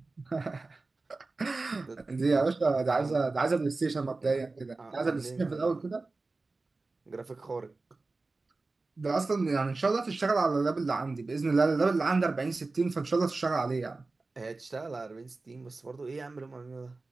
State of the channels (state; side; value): quieter; left; 3.5 dB